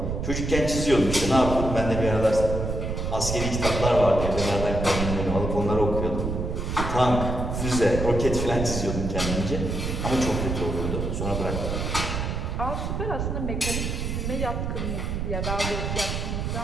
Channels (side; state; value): right; noise; rumble, 2 dB below the sound